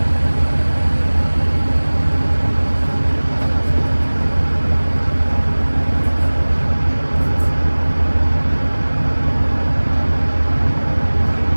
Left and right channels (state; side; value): inverted; both; correlation -1.00